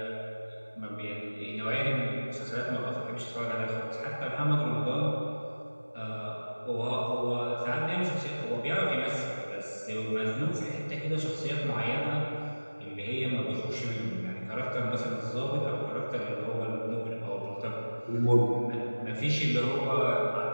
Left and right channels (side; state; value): both; inverted; correlation -1.00